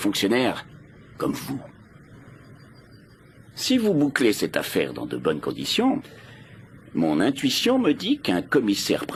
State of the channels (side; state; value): both; identical; correlation 1.00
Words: comme vous. Si vous bouclez cette affaire dans de bonnes conditions, mon intuition me dit qu'un commissaire